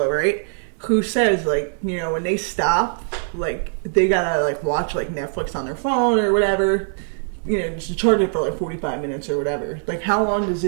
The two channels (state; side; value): silent; left; 62 dB below the other